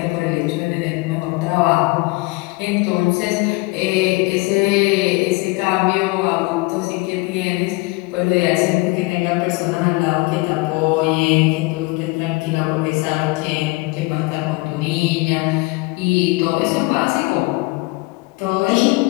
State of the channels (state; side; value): quieter; right; 24.3 dB